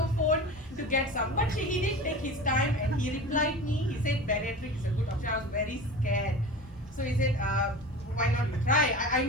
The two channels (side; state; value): both; normal; correlation 0.33